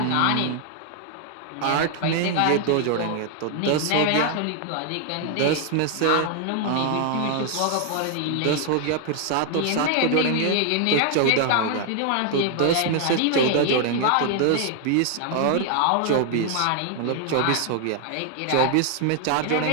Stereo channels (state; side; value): different; both; correlation 0.00